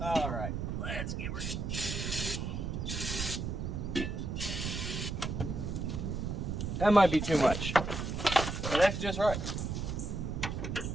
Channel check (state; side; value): noise; right; rumble, 3 dB below the sound